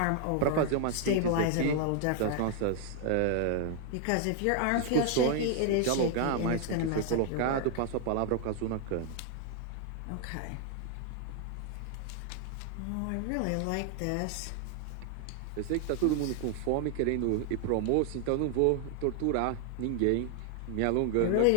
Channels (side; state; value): both; different; correlation 0.00